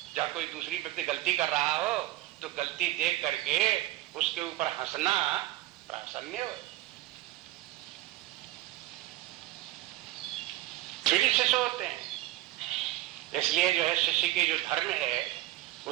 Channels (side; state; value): left; quieter; 16.4 dB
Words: जब कोई दूसरी व्यक्ति गलती कर रहा हो तो गलती देख करके उसके ऊपर हंसना प्रासन्य हो। फिर शिष्य होते हैं। इसलिए जो है शिष्य के जो धर्म है,